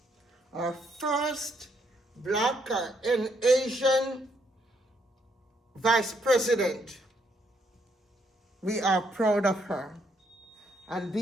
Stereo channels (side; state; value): both; normal; correlation 0.73